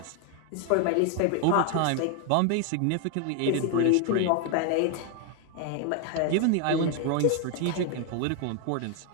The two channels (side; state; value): both; different; correlation 0.01